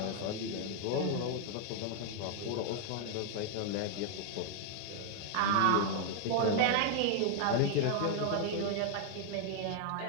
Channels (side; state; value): both; different; correlation 0.00